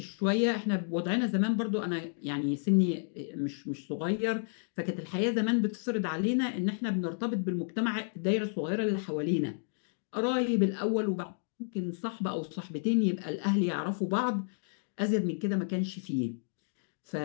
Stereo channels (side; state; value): right; silent; digital silence